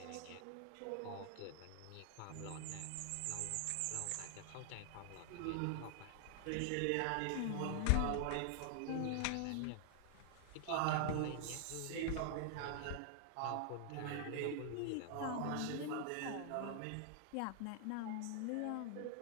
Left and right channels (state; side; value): different; both; correlation 0.00